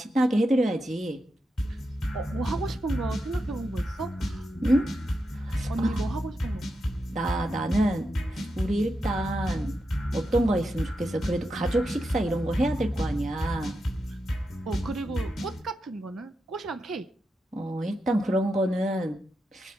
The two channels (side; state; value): both; normal; correlation 0.87